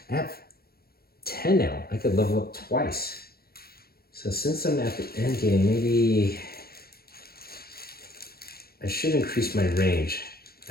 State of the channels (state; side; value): late; right; 0.44 ms